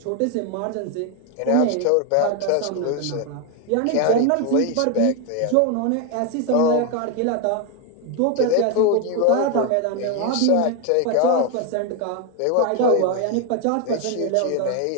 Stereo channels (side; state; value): both; different; correlation 0.01